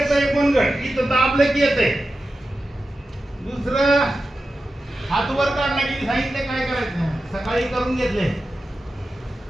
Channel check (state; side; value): normal; both; correlation 0.92